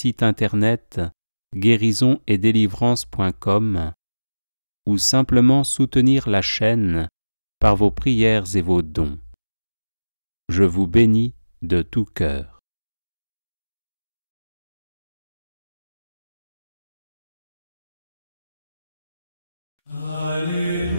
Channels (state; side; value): inverted; both; correlation -0.99